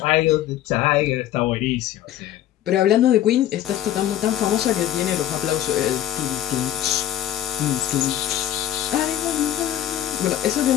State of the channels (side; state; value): right; quieter; 11.9 dB